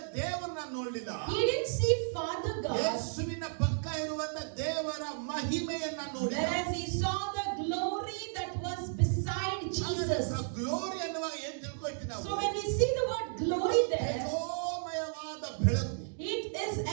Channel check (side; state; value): left; silent; digital silence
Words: ದೇವರನ್ನ ನೋಡಲಿಲ್ಲ, He didn't see Father God, ಯೇಸುವಿನ ಪಕ್ಕ ಇರುವಂತ ದೇವರ ಮಹಿಮೆಯನ್ನ ನೋಡಿದ. whereas he saw the glory that was beside Jesus. Glory ಅನ್ನುವಾಗ ಏನ್ ತಿಳ್ಕೊಳ್ತೀವಿ ನಾವು? So when we see the word glory there, ತೇಜೋಮಯವಾದ ಬೆಳಕು. it is